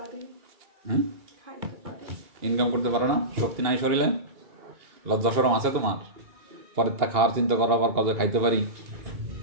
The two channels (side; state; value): left; late; 2.8 ms